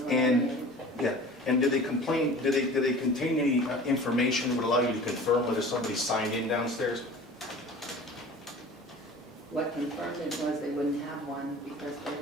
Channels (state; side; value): normal; both; correlation 0.42